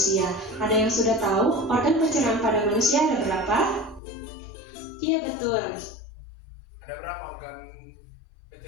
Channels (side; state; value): right; drops out; at 4.0 s